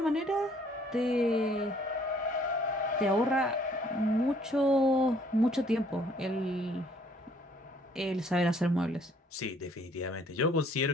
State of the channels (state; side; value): normal; both; correlation 0.61